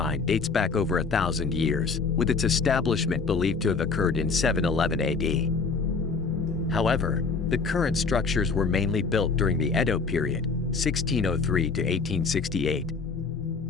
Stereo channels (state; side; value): quieter; right; 4.6 dB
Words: dates back over 1,000 years, with its establishment believed to have occurred in 711 AD. However, The current structures were mainly built during the Edo period, 1603 to 1868.